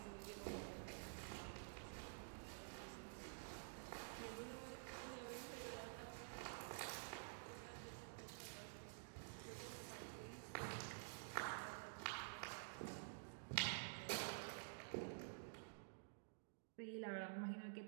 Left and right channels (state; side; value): silent; left; digital silence